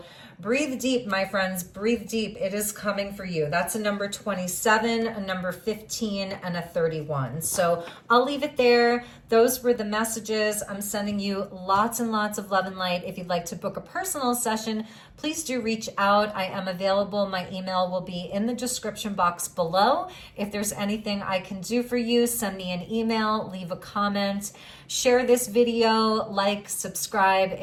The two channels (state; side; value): identical; both; correlation 1.00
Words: breathe deep, my friends, breathe deep. It is coming for you. That's a number 27, a number 15, and a 31. So I'll leave it there. Those were the messages. I'm sending you lots and lots of love and light. If you'd like to book a personal session, please do reach out. I am available. My email will be in the description box below. If there's anything I can do for you, send me an email, leave a comment, share this video, like, subscribe.